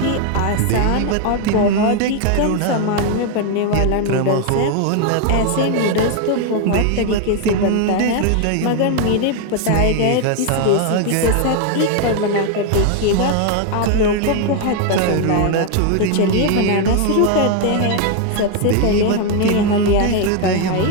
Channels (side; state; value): both; different; correlation 0.01